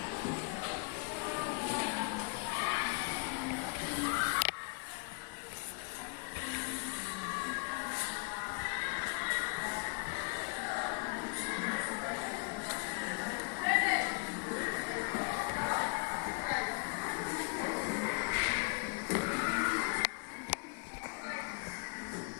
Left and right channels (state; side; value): quieter; right; 36.8 dB